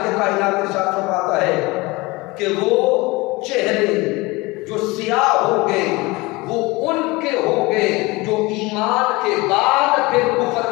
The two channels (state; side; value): quieter; right; 23.2 dB